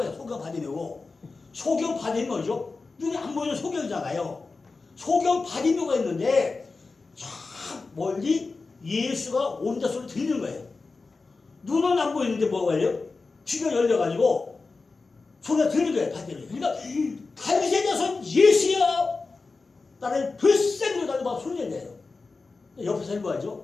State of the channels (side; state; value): right; quieter; 4.0 dB